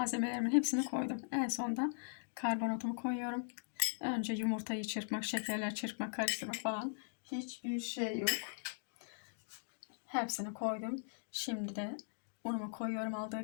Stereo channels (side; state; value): right; silent; digital silence